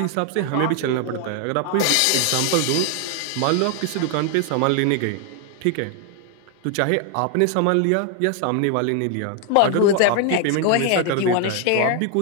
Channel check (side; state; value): both; different; correlation 0.00